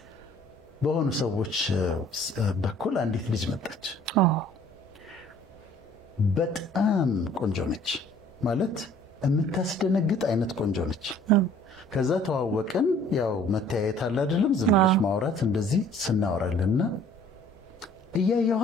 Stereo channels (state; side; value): normal; both; correlation 0.54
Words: በሆኑ ሰዎች በኩል አንዲት ልጅ መጣች። በጣም ቆንጆ ነች፣ ማለት የምታስደነግጥ አይነት ቆንጆ ነች። ከዛ ተዋወቅን። ያው መተያየት አለ አይደለም፣ ዝም ብለሽ ማውራት እንደዚህ ስናወራልና